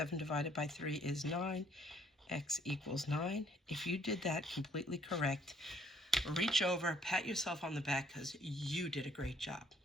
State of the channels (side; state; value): both; normal; correlation 0.63